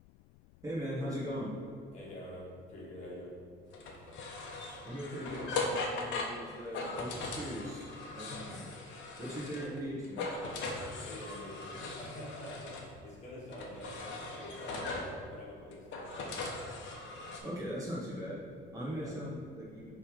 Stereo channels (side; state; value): left; noise; rumble, 21 dB below the sound